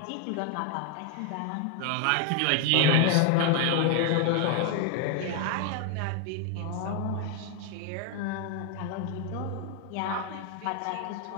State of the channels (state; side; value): different; both; correlation 0.01